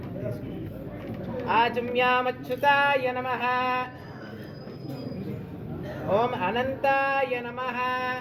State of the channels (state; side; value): identical; both; correlation 1.00